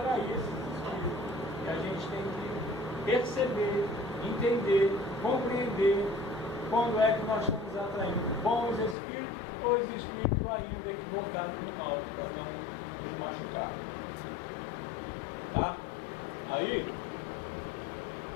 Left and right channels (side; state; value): right; drops out; at 9.0 s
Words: esses Espíritos. E a gente tem que perceber, entender, compreender quando é que nós estamos atraindo bons Espíritos ou os Espíritos ainda equivocados no mal, para não nos machucar. Tá? Aí,